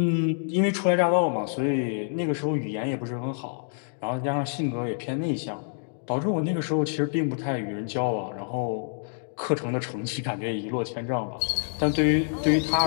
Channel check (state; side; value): silent; right; digital silence